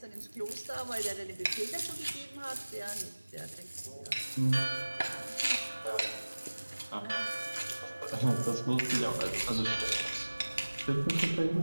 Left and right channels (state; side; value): inverted; both; correlation -1.00